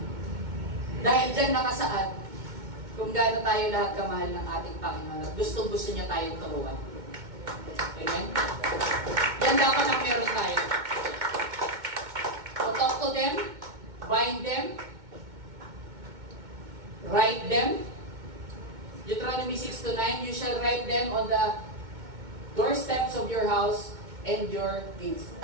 Dahil dyan nakasaad kung gaano tayo lahat kamahal ng ating Panginoon at gustong-gusto niya tayong turuan. Amen? Yan dapat ang meron tayo. So talk to them, bind them, write them. Deuteronomy 6-9, you shall write them on the doorsteps of your house and your gates.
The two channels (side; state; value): left; late; 2.2 ms